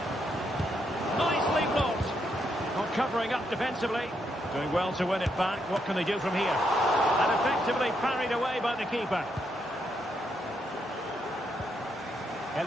Nicely blocked. Not covering up defensively. Doing well to win it back. What can they do from here? And effectively parried away by the keeper.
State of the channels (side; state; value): both; normal; correlation 0.78